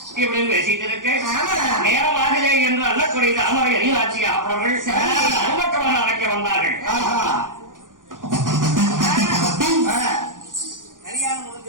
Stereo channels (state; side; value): late; left; 0.89 ms